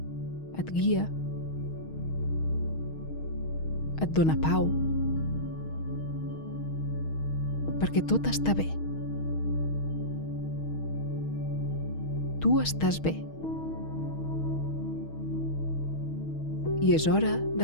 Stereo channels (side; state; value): right; late; 6.4 ms